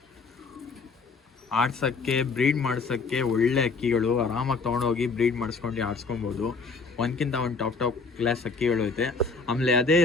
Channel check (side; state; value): right; quieter; 4.3 dB